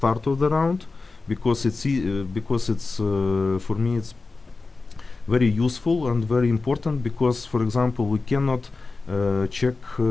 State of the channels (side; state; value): right; quieter; 3.9 dB